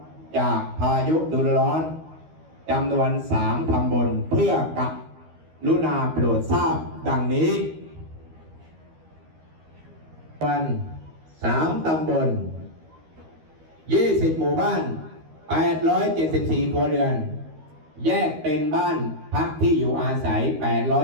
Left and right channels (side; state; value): left; late; 13 ms